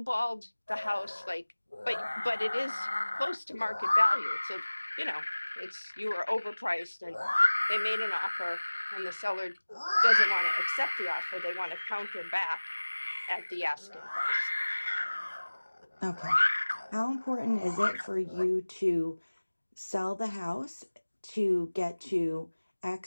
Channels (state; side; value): inverted; both; correlation -1.00